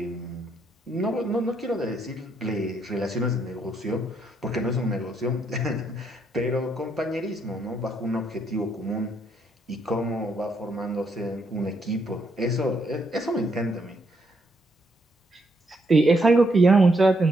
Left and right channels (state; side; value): normal; both; correlation 0.75